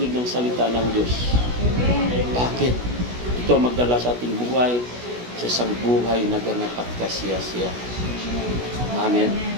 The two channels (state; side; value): late; left; 16 ms